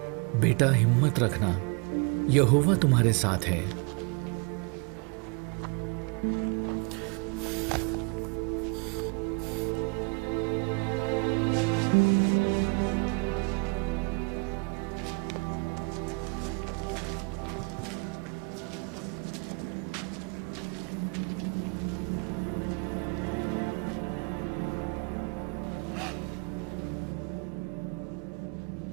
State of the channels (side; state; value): left; quieter; 32.5 dB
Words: बेटा हिम्मत रखना, यहोवा तुम्हारे साथ है।